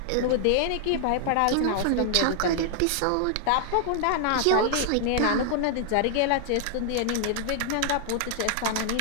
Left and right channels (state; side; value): different; both; correlation 0.00